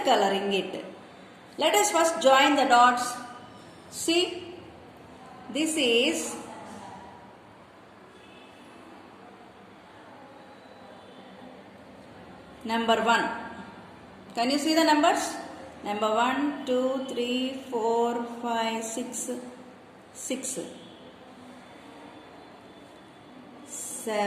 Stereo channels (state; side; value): identical; both; correlation 1.00